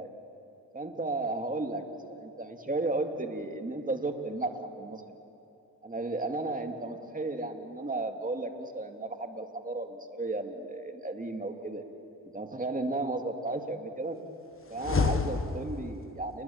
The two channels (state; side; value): normal; both; correlation 0.38